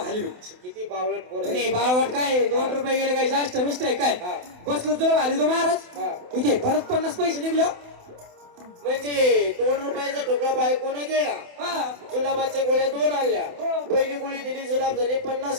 हलवी. किती बावळट पोर आहे. नाही बाळवट काय 2 रुपये गेले काय जास्त मिस्ट आहे काय? हा. बसलो जुलाब हलवी तो महाराज. हा. इथे परत 50 पैसे निघले हो. म्हणजे 2 रुपयाचा ठोकळा बायकोने गिळला, हा. जुलाबाच्या गोळ्या 2 आणल्या. हो. पहिली गोळी दिली, जुलाब झाले, 50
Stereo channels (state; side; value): late; left; 28 ms